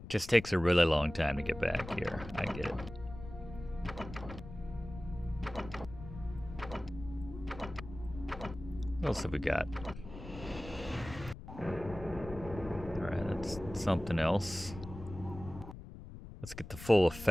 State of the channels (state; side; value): noise; left; rumble, 13 dB below the sound